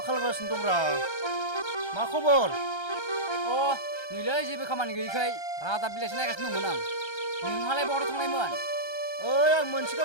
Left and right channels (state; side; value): late; right; 1.3 ms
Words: खालामगासिनो दंब्रा मा खबर नैलै जेबो खामानि गैयैखाय रादाब बिलाइसो नायगासिनो दंमोन आं नोंहालाय बहाथ थांनायमोन ओइ आं मोनसे